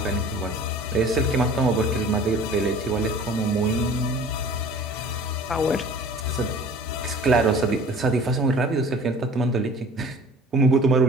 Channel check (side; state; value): both; normal; correlation 0.45